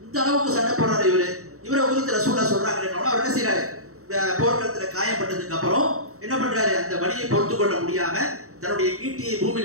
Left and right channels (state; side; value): late; left; 0.64 ms